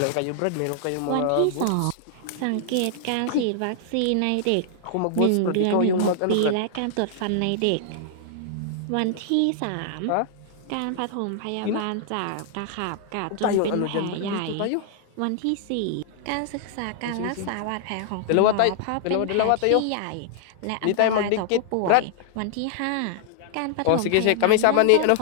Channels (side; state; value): both; different; correlation -0.01